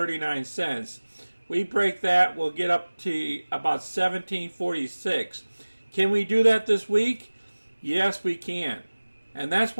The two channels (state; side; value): inverted; both; correlation -1.00